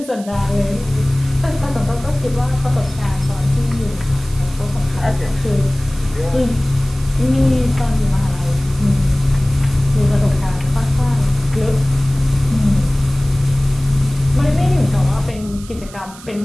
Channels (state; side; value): noise; right; hiss, 19 dB below the sound